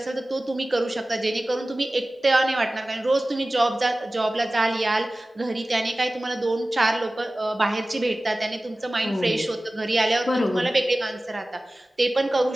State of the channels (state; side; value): normal; both; correlation 0.97